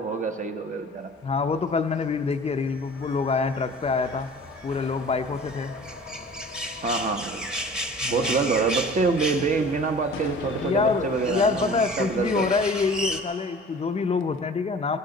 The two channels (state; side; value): normal; both; correlation 0.45